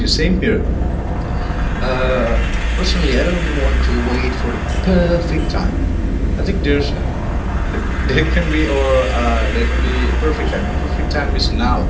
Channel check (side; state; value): both; identical; correlation 1.00